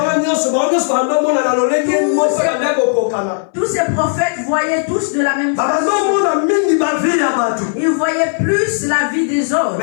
Tous ces prophètes voyaient tous de la même façon. Ils voyaient plus la vie des autres.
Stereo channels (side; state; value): right; silent; 64 dB below the other